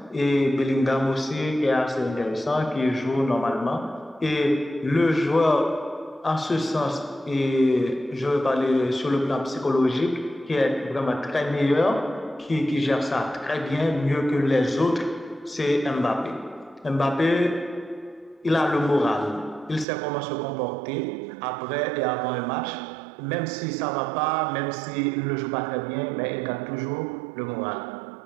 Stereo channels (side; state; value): left; drops out; at 19.9 s